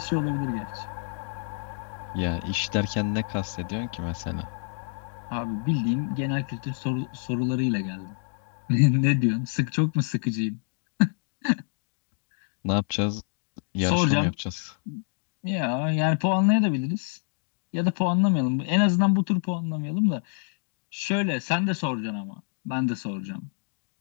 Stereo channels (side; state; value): right; silent; digital silence